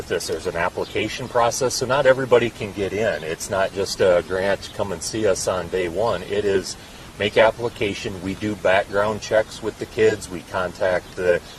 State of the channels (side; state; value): both; identical; correlation 1.00